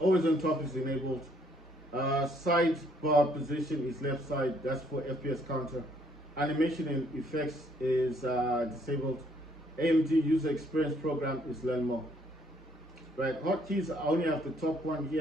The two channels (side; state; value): both; normal; correlation 0.67